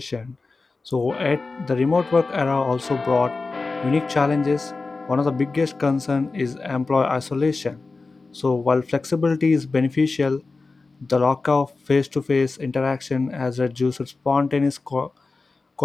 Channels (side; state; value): right; quieter; 3.8 dB